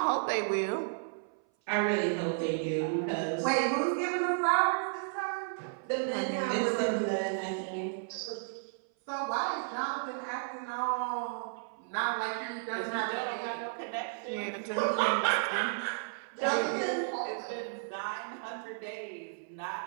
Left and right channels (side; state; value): left; silent; 56 dB below the other